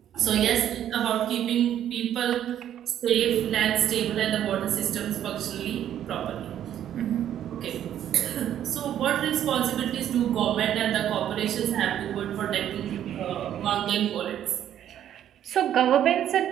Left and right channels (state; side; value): quieter; left; 10.7 dB